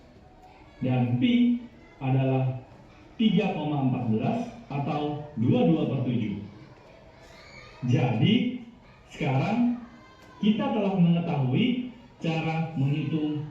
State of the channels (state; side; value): identical; both; correlation 1.00